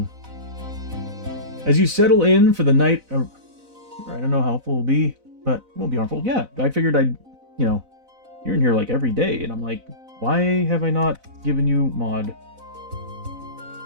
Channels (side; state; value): left; late; 4.0 ms